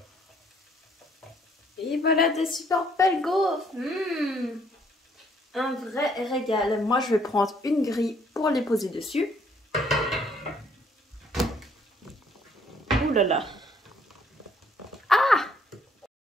Et voilà des super belles gaufres. Un vrai régal. Moi, je vais prendre une grille pour les poser dessus. Ouh là là. Ah!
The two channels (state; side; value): normal; both; correlation 0.65